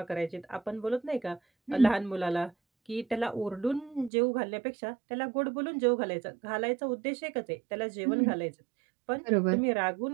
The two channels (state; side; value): drops out; left; at 4.1 s